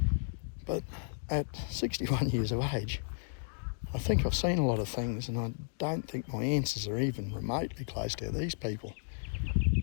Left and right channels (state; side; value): silent; right; digital silence